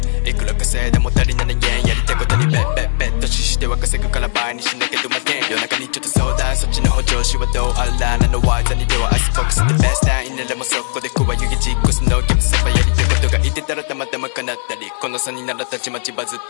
いくら稼いでも足りない円やりたいことにベットしては稼ぐから倍にしなきゃどまけん夜中にちょっと相談そっちの補助しはどうあらなのワイザにではアイスフォックスでベストタインならもそこで加湯気実行すのゲームセバやりたいことが言ってたらたまたま叶ったりこの差にならたちまちバズっ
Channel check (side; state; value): right; silent; 59 dB below the other